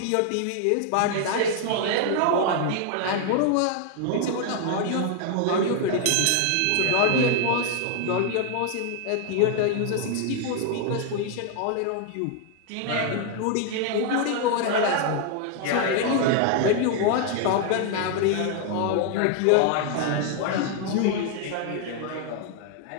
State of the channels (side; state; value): both; different; correlation 0.00